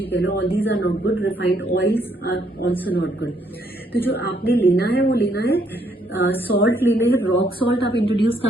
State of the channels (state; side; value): normal; both; correlation 0.71